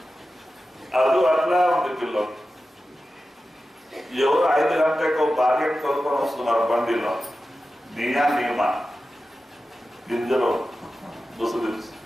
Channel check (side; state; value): both; normal; correlation 0.93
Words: అది అట్లా ఉంది పిల్లలు. ఎవరు 5 గంటలకు భార్యను కొనుక్కొని వస్తున్నారు బండిలో. నియమ గింజలో ముసుగు